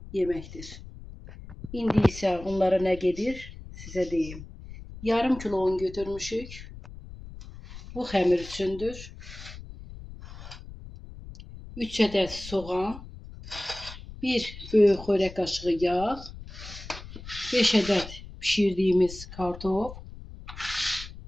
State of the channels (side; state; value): left; noise; rumble, 14 dB below the sound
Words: yeməkdir. İndi isə onlara nə gedir sizə deyim. Yarım kilo un götürmüşük. Bu xəmir üçündür. 3 ədəd soğan, 1 böyük xörək qaşığı yağ, 5 ədəd pişirdiyimiz kartof,